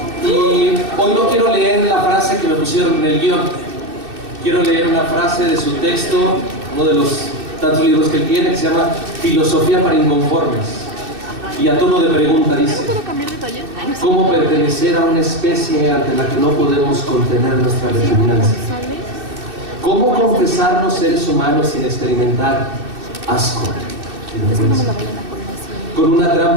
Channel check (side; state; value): left; late; 2.6 ms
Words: Y hoy no quiero leer la frase que me pusieron en el guión. Quiero leer una frase de su texto, uno de los tantos libros que él tiene, que se llama Filosofía para Inconformes. Y a tono de pregunta dice: ¿cómo pertenecer a una especie ante la que no podemos contener nuestra repugnancia? ¿Cómo confesarnos seres humanos sin experimentar asco y vergüenza? Con una